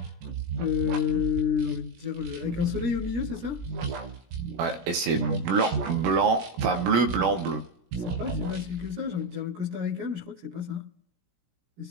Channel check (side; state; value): left; late; 17 ms